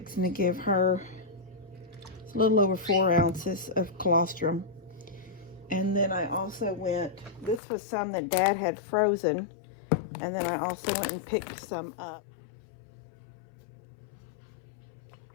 to give her a little over 4 ounces of colostrum. And then I also went, this was some that Dad had frozen. And then I also went and picked some up.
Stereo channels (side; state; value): right; drops out; at 7.6 s